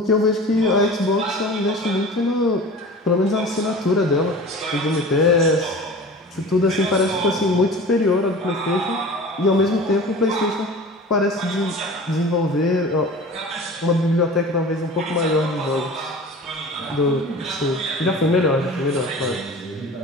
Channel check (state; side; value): normal; both; correlation 0.39